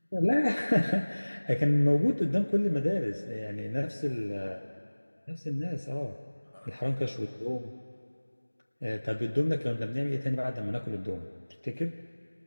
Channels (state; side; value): inverted; both; correlation -1.00